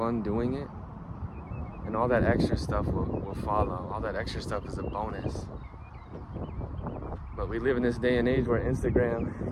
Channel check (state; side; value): identical; both; correlation 1.00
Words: doing it. And all that extra stuff will follow. All that extra stuff is a bonus. But we live in this day and age where